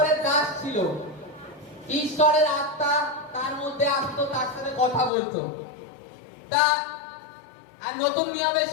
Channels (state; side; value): drops out; right; at 5.1 s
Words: দাস ছিল। ঈশ্বরের আত্মা তার মধ্যে আসতো, তার সাথে কথা বলতো। তা আর নতুন নিয়মে